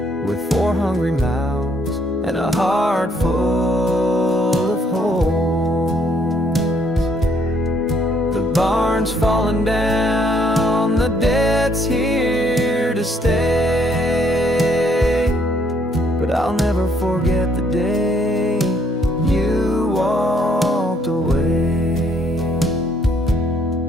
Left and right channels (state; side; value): normal; both; correlation 0.68